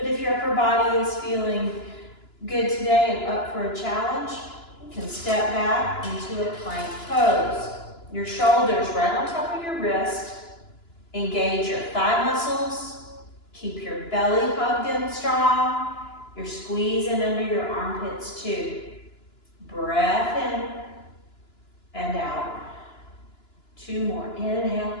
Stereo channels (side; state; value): right; late; 2.9 ms